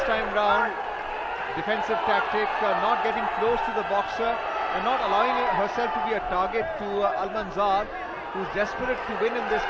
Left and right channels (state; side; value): identical; both; correlation 1.00